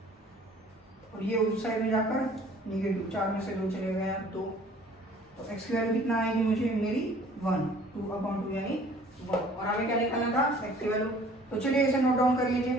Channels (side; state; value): both; normal; correlation 0.52